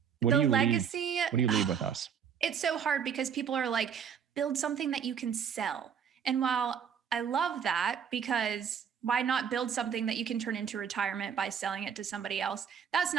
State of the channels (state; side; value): quieter; left; 7.6 dB